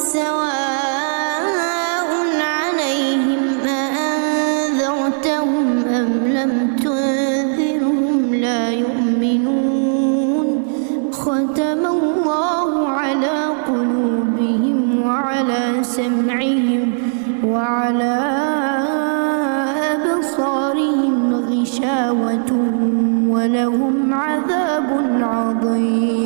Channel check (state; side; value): silent; left; digital silence